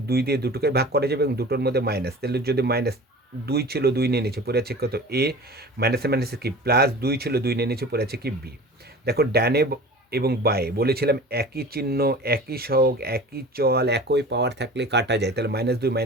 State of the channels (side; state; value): both; normal; correlation 0.39